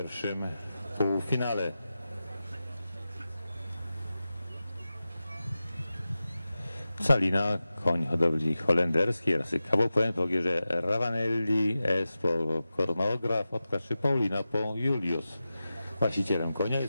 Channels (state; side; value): inverted; both; correlation -0.93